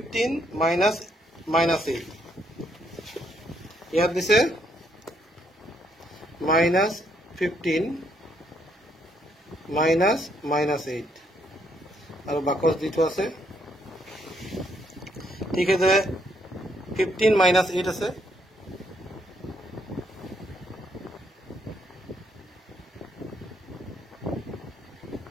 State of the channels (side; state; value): both; normal; correlation 0.72